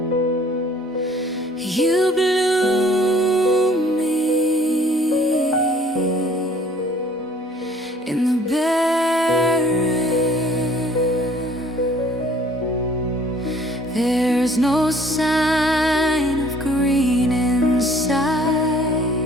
You bloom me in the barren. There's no sign of green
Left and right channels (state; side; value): normal; both; correlation 0.55